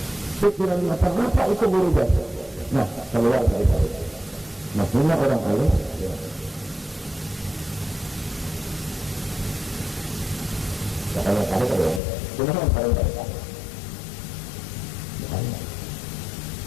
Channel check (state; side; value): drops out; right; at 12.0 s